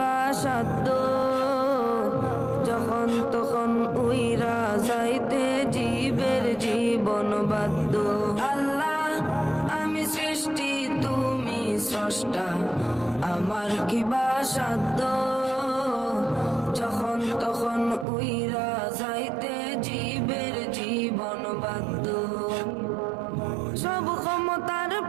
সাধ্য যখন তখন উইরা যাইতে জীবের জীবন বাধ্য। আল্লাহ আমি সৃষ্টি তুমি স্রষ্টা, আমার কিবা সাধ্য যখন তখন উইরা যাইতে জীবের জীবন বাধ্য। সব ক্ষমতার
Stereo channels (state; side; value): drops out; left; at 18.1 s